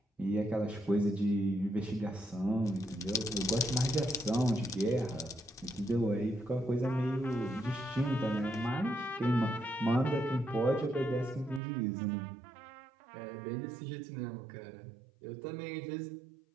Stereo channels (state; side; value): drops out; left; at 11.6 s